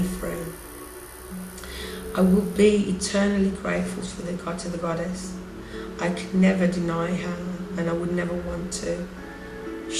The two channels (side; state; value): both; identical; correlation 1.00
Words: free. I will be eternally grateful for to the goddess. I could never deny her, and I would never want to.